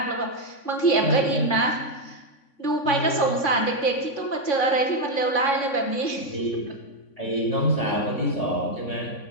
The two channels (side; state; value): right; late; 3.5 ms